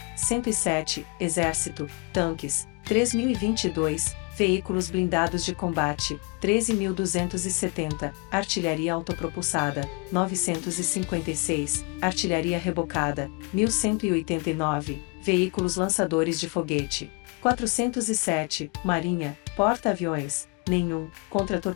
107, exército, tanques, 3.022, veículos blindados de combate, 13.270, artilharia autopropulsada, 956, artilharia rebocada, 1.189, veículos lançadores de foguete, 407, marinha, porta-aviões, nenhum,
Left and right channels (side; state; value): right; quieter; 30.3 dB